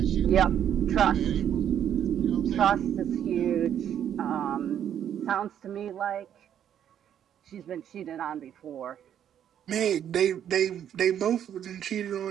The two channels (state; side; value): quieter; left; 9.7 dB